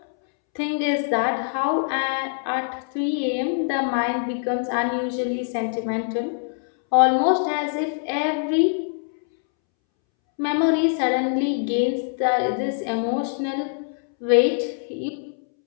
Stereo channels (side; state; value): right; silent; 63 dB below the other